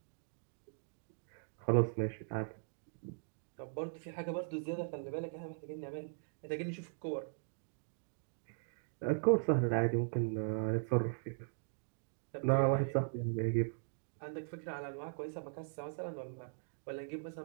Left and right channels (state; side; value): silent; left; digital silence